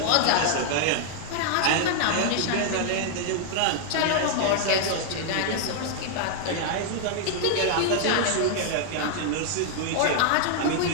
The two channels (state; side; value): different; both; correlation 0.00